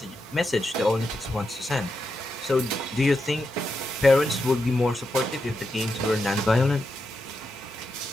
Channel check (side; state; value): both; normal; correlation 0.86